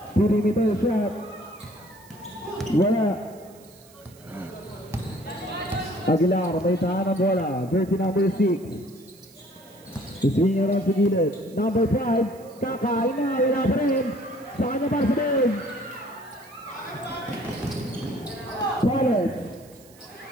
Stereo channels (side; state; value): right; noise; hiss, 25 dB below the sound